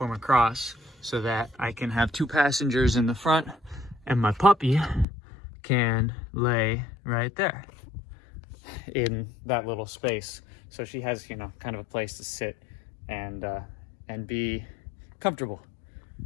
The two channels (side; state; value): right; drops out; at 5.1 s